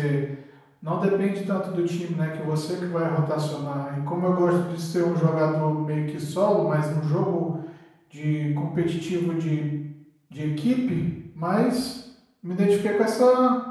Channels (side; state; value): both; identical; correlation 1.00